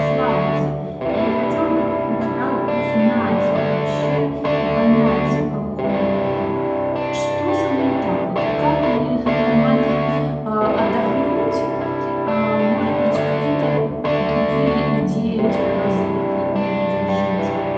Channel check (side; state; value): both; identical; correlation 1.00